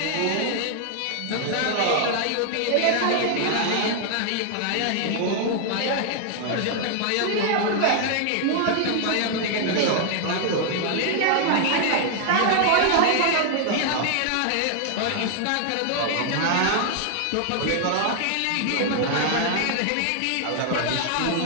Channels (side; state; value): both; different; correlation 0.00